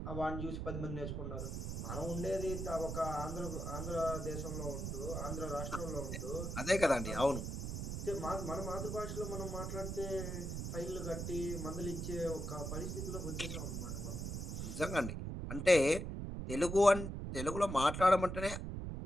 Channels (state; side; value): noise; right; rumble, 4 dB below the sound